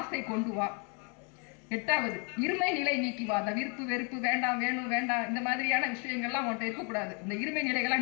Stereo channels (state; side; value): quieter; right; 36.0 dB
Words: கொண்டு வா. 8வது இருமை நிலை நீக்கி வா. அந்த விருப்பு வெறுப்பு வேண்டாம் வேண்டாம் இந்த மாதிரியான விஷயங்கள்லாம் உன்கிட்ட இருக்கக்கூடாது. இந்த இருமை